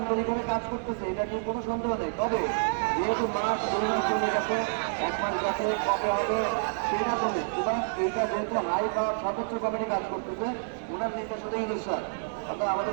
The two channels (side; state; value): left; silent; 59 dB below the other